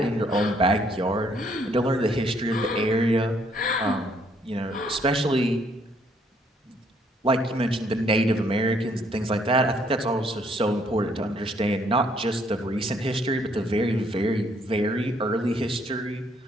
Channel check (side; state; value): both; normal; correlation 0.67